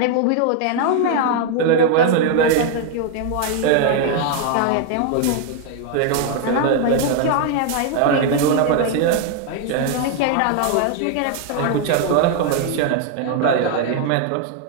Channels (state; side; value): different; both; correlation 0.00